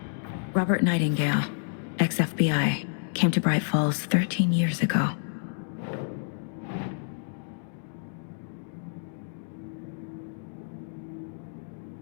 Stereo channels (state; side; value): silent; right; digital silence